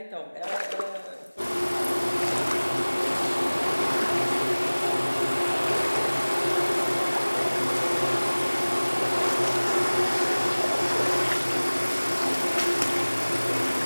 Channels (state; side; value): inverted; both; correlation -1.00